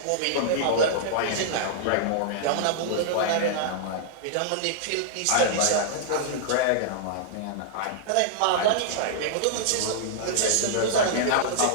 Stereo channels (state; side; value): different; both; correlation -0.01